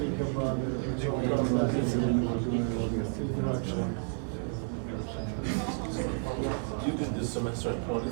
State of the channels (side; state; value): left; silent; 57 dB below the other